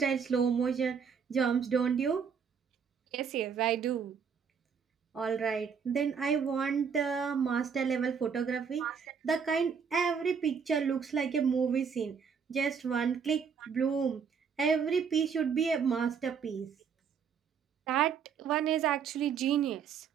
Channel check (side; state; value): left; quieter; 6.6 dB